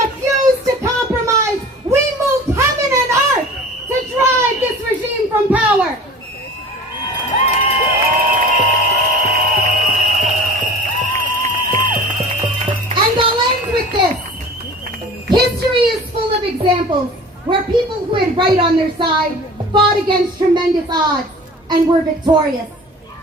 of examples where people who had right on their side fought against tremendous odds and were victorious.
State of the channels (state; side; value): normal; both; correlation 0.41